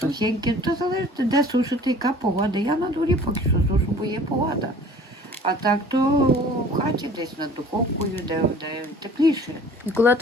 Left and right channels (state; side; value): normal; both; correlation 0.48